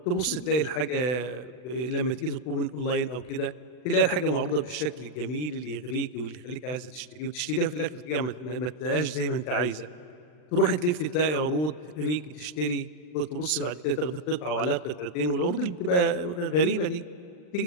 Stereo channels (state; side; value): late; right; 39 ms